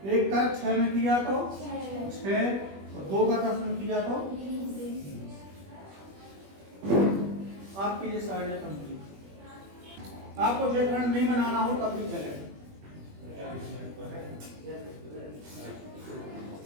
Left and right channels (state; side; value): late; left; 21 ms